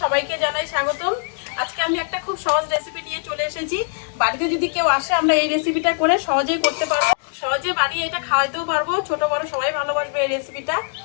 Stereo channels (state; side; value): silent; right; digital silence